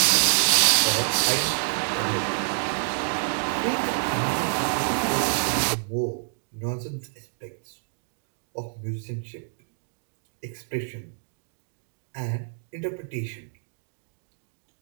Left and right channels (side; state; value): left; silent; 60 dB below the other